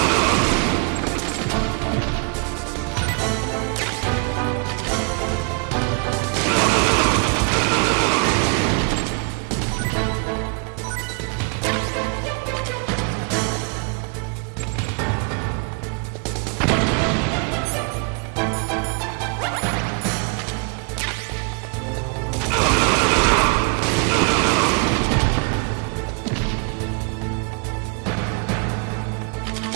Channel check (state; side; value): quieter; left; 35.8 dB